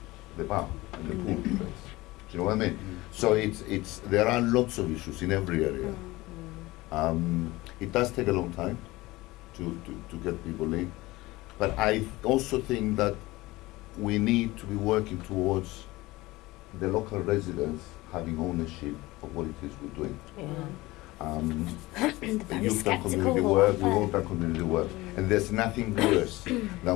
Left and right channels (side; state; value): right; quieter; 19.9 dB